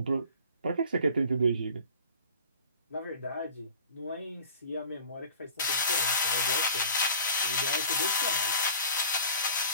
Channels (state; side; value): inverted; both; correlation -0.44